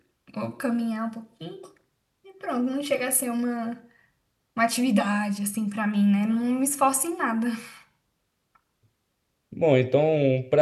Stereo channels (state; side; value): identical; both; correlation 1.00